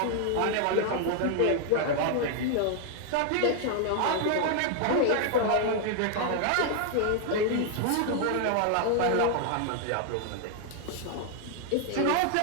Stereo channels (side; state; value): both; different; correlation 0.00